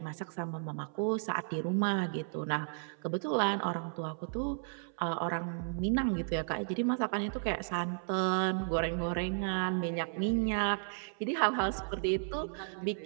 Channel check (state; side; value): silent; left; 55 dB below the other